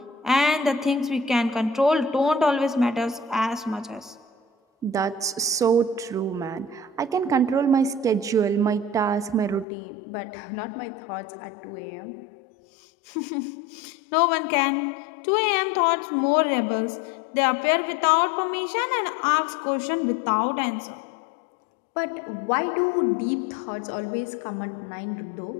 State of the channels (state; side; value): drops out; right; at 9.7 s